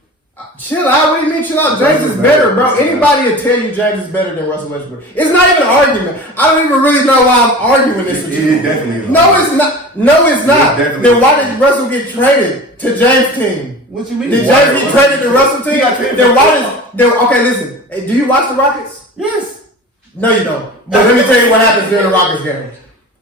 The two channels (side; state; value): both; normal; correlation 0.36